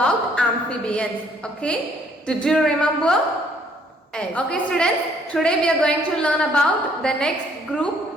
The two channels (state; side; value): normal; both; correlation 0.64